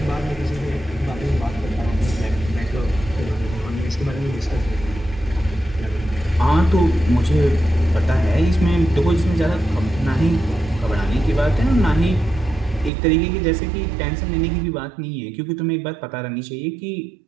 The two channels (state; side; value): drops out; left; at 12.9 s